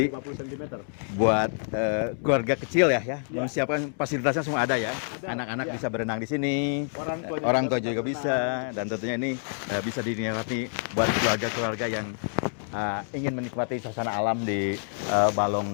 dan 50 cm. Buat keluarga kecil ya, mau siapkan fasilitasnya semua ada ya. Ada, Anak-anak ya. bisa berenang di sini, Orang tua tua juga bisa, dan tentunya ini bisa dinikmati buat keluarga-keluarga yang ingin menikmati suasana alam di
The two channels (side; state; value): right; silent; digital silence